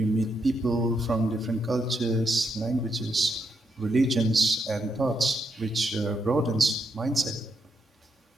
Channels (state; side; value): normal; both; correlation 0.80